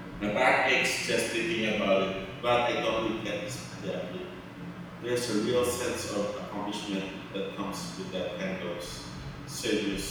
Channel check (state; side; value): identical; both; correlation 1.00